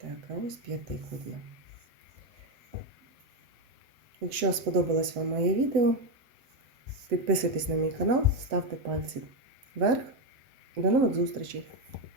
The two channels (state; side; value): late; left; 7.9 ms